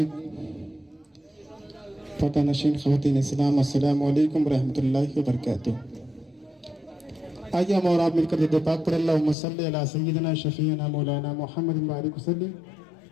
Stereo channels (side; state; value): right; drops out; at 9.3 s